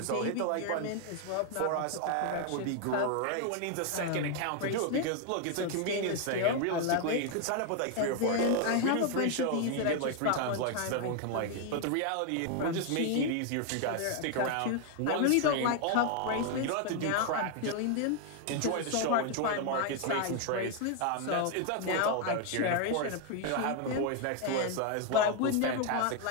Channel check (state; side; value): different; both; correlation 0.00